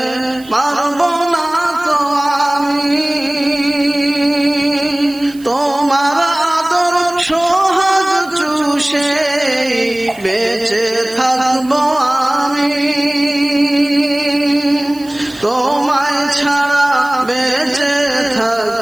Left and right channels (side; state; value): right; noise; hiss, 23 dB below the sound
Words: পারবো না তো আমি, তোমার আদর সোহাগ চুষে বেঁচে থাকবো আমি। তোমায় ছাড়া বেঁচে